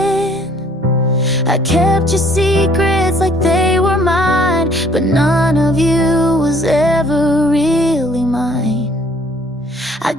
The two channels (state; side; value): normal; both; correlation 0.60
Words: I kept your secrets like they were mine, but none of you was ever really mine. I